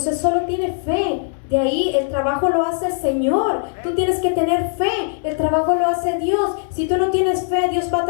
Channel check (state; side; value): silent; right; digital silence